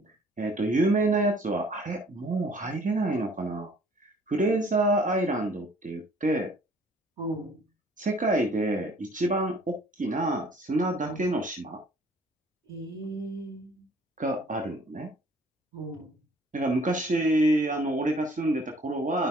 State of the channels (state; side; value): normal; both; correlation 0.56